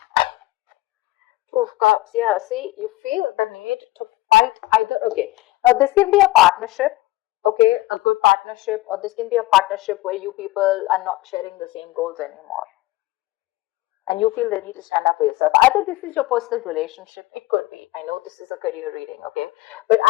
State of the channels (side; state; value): right; quieter; 18.1 dB